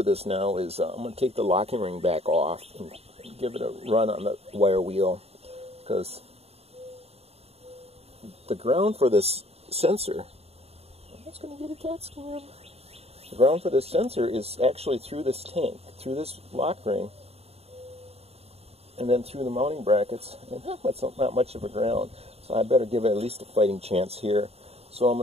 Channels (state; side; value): late; left; 0.30 ms